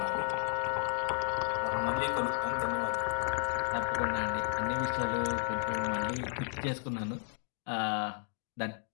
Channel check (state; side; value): silent; right; 56 dB below the other